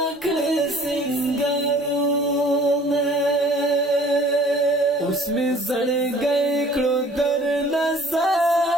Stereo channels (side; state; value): both; normal; correlation 0.52